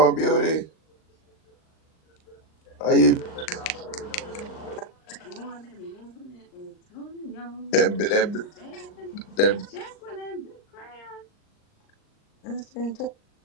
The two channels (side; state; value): right; late; 39 ms